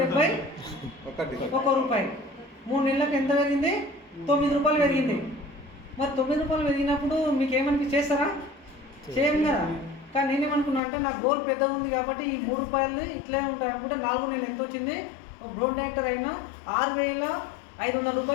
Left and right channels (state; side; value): drops out; right; at 10.8 s